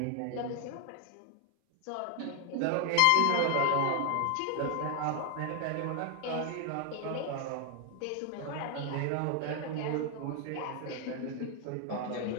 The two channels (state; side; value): different; both; correlation 0.00